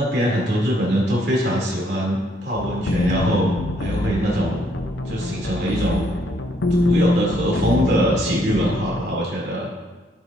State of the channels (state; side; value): normal; both; correlation 0.69